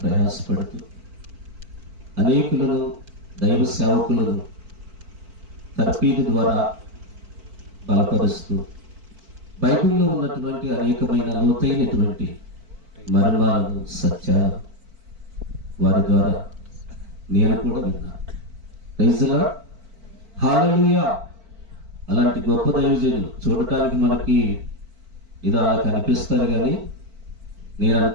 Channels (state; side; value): late; left; 4.5 ms